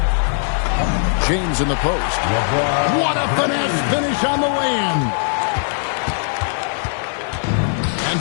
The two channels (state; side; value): silent; right; 66 dB below the other